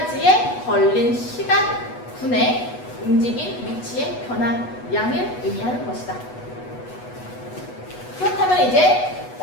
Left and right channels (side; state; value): right; late; 8.1 ms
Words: 걸린 시간분의 움직인 위치의 변화량을 의미하는 것이다. 그렇다면 이제